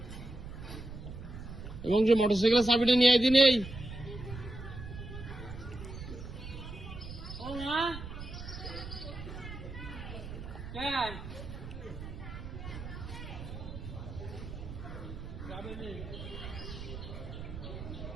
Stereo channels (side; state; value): right; noise; rumble, 10 dB below the sound